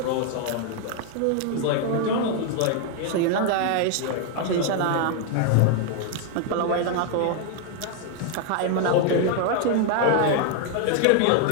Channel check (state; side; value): different; both; correlation 0.00